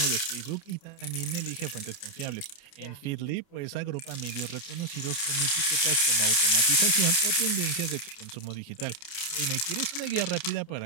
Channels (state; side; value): late; right; 29 ms